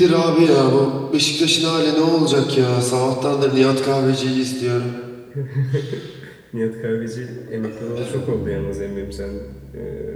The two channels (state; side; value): identical; both; correlation 1.00